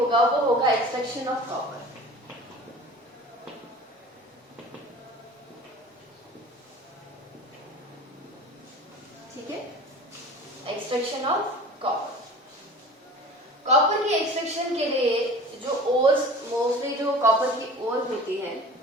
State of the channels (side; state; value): both; normal; correlation 0.40